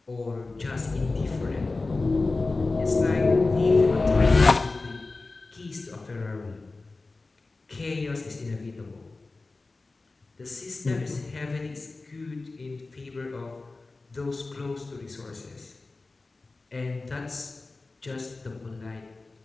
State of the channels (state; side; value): quieter; right; 3.5 dB